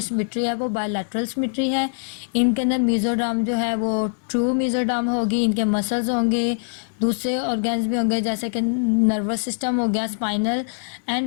सिमेट्री है वो बायलैटरल सिमेट्री है। इनके अंदर मेसोडर्म जो है वो ट्रू मेसोडर्म होगी, इनके मसल्स होंगे, दूसरे ऑर्गन्स भी होंगे जैसे कि नर्वस सिस्टम हो गया, स्पाइनल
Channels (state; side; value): silent; right; 62 dB below the other